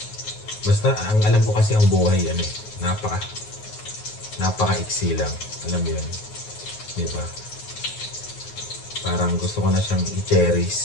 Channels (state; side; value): late; right; 9.5 ms